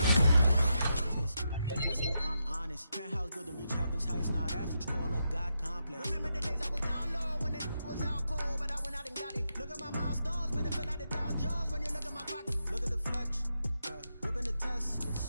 That's when I'm honest. Penthouse building, reach heaven's heights. Now that's what you call a God complex. Remember the days I was down low when it was out cold, but I went out and got it. Look at my milestones, man, it feel like the Dow Jones when you look at my pocket. Look at the flex, whipping the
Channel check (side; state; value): both; inverted; correlation -0.84